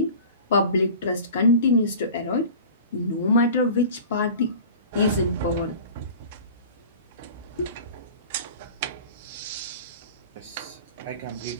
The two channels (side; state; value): both; inverted; correlation -0.39